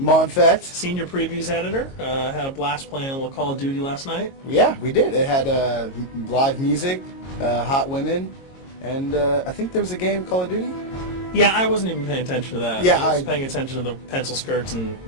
Senior Previews Editor. Had a blast playing a little Call of Duty last night. Yeah, we did. It had live music, hot women, and I think there was a game, Call of Duty? Yeah, I wasn't even paying attention to that. Yeah, I was paying attention to the pencil skirts and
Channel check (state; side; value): late; right; 22 ms